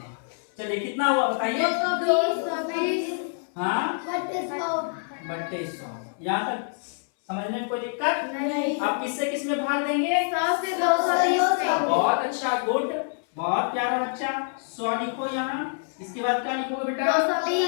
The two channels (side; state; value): right; silent; 61 dB below the other